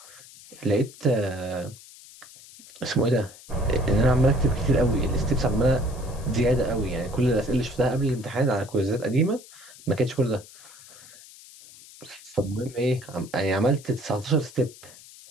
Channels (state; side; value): noise; left; hiss, 20 dB below the sound